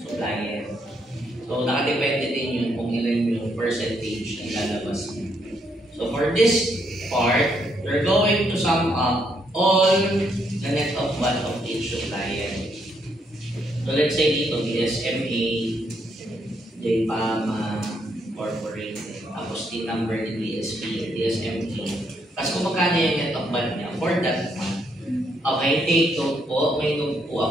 So, nakadepende din yun kung ilan yung percentage na ilalabas niya. So, for this part, we're going to sum up all the net of what of each supplier. So, let's say dito, DSMA, JPAMA, Corporate, tapos the number ni DSP, DSMA. Tapos kung magkano yung net of what niya for that month. Okay, take note po. May note po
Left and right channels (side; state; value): both; normal; correlation 0.74